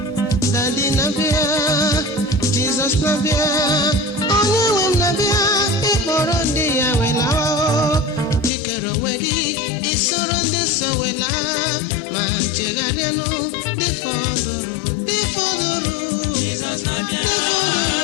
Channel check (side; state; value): right; drops out; at 8.5 s